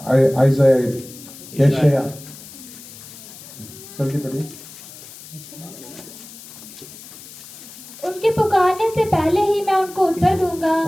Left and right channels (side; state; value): left; noise; hiss, 17 dB below the sound